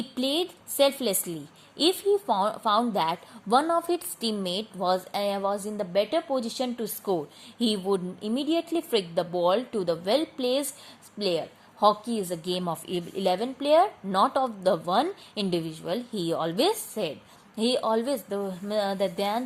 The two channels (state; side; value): identical; both; correlation 1.00